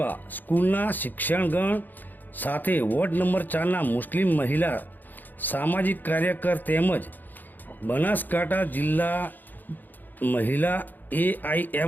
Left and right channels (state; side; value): late; right; 0.087 ms